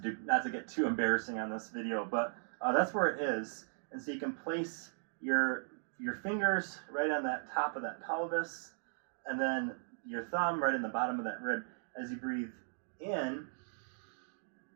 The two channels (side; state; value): left; silent; digital silence